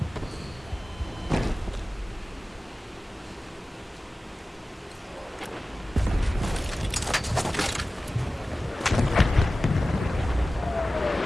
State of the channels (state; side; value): normal; both; correlation 0.96